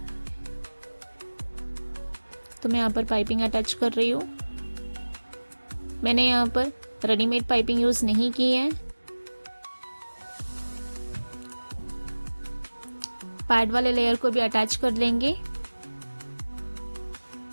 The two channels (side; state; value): both; inverted; correlation -1.00